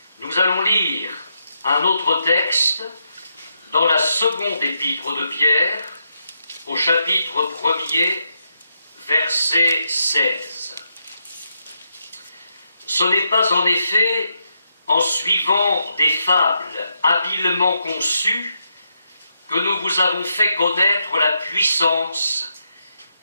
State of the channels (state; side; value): inverted; both; correlation -0.81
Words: Nous allons lire un autre texte dans la seconde épître de Pierre, au chapitre 1er, verset 16. « Ce n'est pas en effet en suivant des fables habilement conçues que nous vous avons fait connaître la puissance